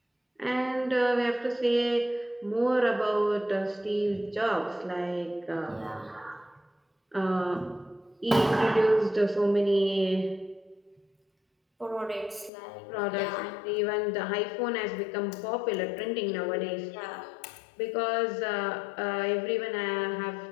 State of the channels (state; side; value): drops out; right; at 12.5 s